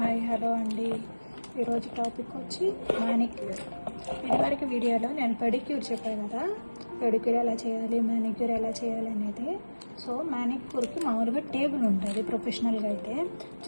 hello అండి. ఈరోజు topic వచ్చి మానిక్యూర్. ఇదివరకు వీడియోలో నేను పెడిక్యూర్ చెప్పాను కదా, పెడిక్యూర్ ఎలా చేయాలి, మానిక్యూర్ ఎలా చేయాలి అనేది. సో మానిక్యూర్కి మామూలుగా టేబుల్ ఉంటుంది ప్రొఫెషనల్గా అయితే.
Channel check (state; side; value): inverted; both; correlation -1.00